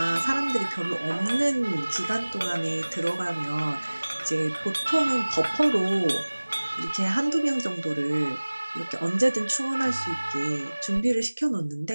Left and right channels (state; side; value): inverted; both; correlation -1.00